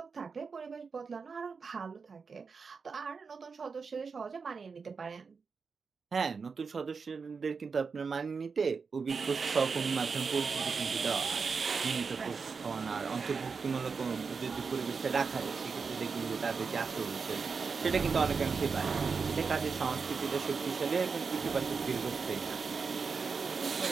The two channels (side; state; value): left; quieter; 5.2 dB